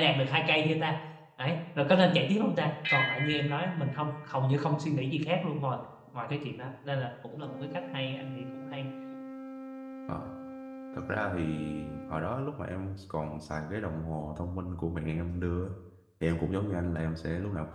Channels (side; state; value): both; identical; correlation 1.00